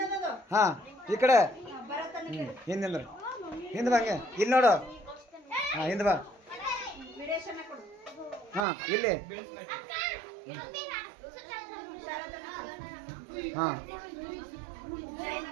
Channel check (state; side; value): drops out; left; at 8.7 s